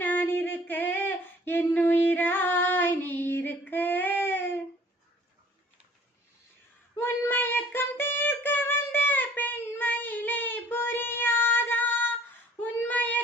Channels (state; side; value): normal; both; correlation 0.54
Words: நான் இருக்க என்னுயிராய் நீ இருக்க உன்மயக்கம் தீர்க்க வந்த பெண்மயிலை புரியாதா